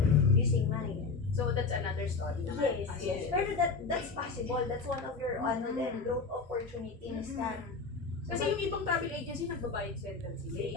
using Maya. So, that's another story naman. Yes. Pero that's possible. That's one of your then growth opportunity na start. Kasi yung ibang travel agency, nagbabayad center sila.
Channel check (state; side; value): quieter; right; 4.4 dB